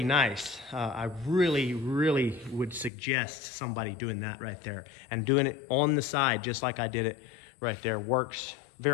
nice. I really, really would suggest somebody doing that right there. And doing it on the side, just like I did it right there, works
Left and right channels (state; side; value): drops out; right; at 2.9 s